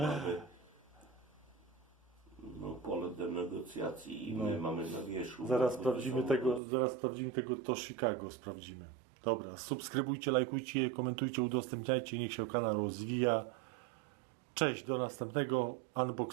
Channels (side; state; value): left; drops out; at 6.6 s